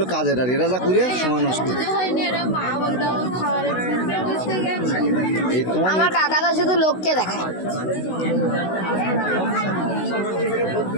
কাজের আর এরা যা করে সময় নষ্ট আমার কাকাটা শুধু লোককে দেখায়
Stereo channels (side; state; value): right; late; 16 ms